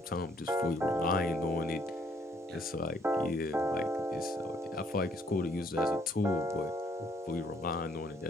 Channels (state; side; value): normal; both; correlation 0.66